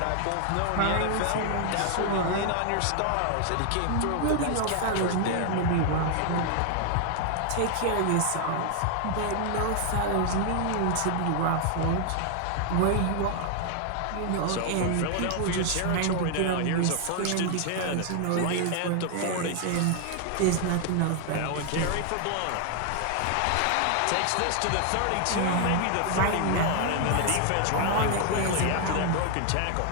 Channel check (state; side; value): different; both; correlation 0.00